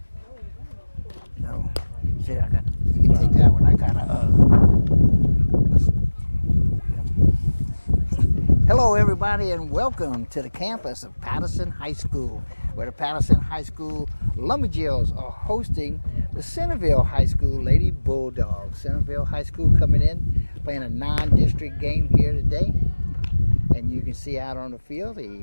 No. See, you can take that one. I got Hello, everybody, and welcome to the campus of Patterson High School, where the Patterson High School Lumberjills are hosting the Centerville High School Lady Bulldogs. Centerville High School coming in, playing a non-district game here today. And you can see out on the field,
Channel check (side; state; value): both; inverted; correlation -1.00